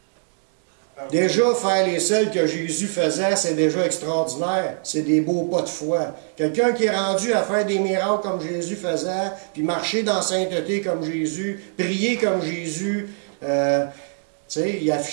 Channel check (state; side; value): silent; left; digital silence